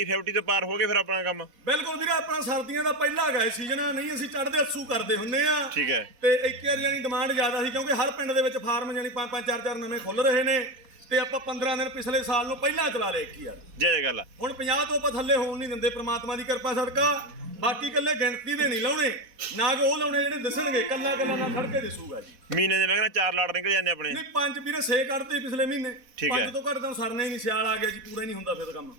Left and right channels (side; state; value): left; late; 4.1 ms